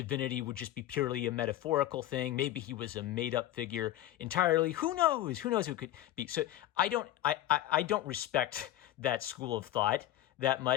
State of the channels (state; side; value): quieter; right; 13.9 dB